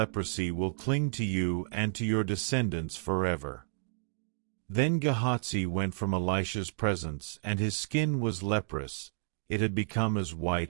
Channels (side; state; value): left; silent; digital silence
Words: will cling to you and to your descendants forever." Then Gehazi went from Elisha's presence, and his skin was leprous. It had become as